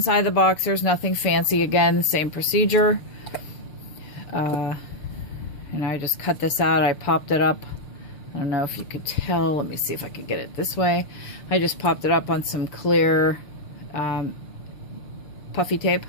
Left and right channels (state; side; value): late; right; 6.8 ms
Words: of the box, there's nothing fancy. Again, same procedure. And I just cut this out. I popped it up. I don't know if you could tell. Let me see if I could get it this way. I just popped it up on some clear puffy tape,